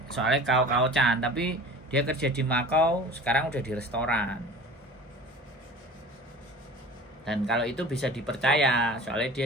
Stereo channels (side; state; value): both; normal; correlation 0.40